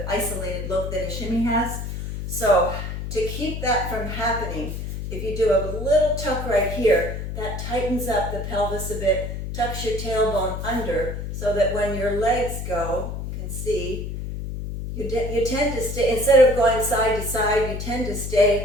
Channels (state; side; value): noise; left; hum, 5 dB below the sound